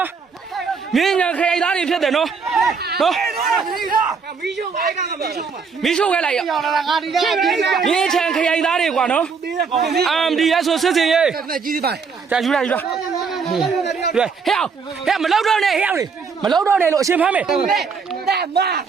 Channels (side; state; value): left; quieter; 5.5 dB